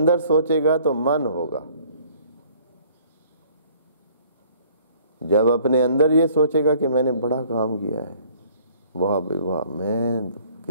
سوچے گا تو من ہوگا، جب اپنے اندر یہ سوچے گا کہ میں نے بڑا کام کیا ہے، واہ بھائی واہ، میں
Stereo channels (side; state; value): both; inverted; correlation -0.57